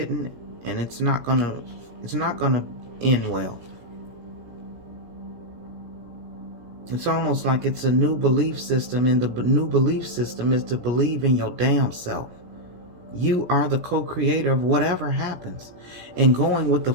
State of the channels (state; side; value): late; left; 17 ms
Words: and it's not gonna end well. It's almost like it's a new belief system, and the new belief system is to believe in your damn self. You are the co-creator of whatever happens, and going with the